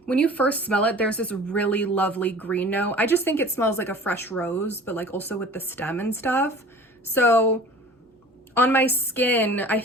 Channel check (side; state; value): both; normal; correlation 0.43